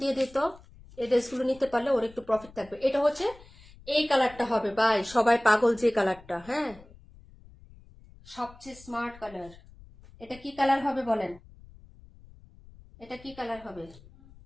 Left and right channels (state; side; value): noise; left; rumble, 22 dB below the sound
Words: দিয়ে দিত, এই ড্রেসগুলো নিতে পারলে ওর একটু প্রফিট থাকবে। এটা হচ্ছে এই কালারটা হবে ভাই, সবাই পাগল যে কালারটা, হ্যাঁ সবচেয়ে স্মার্ট কালার। এটা কি কালার হবে বলেন, এটা কি কালার হবে?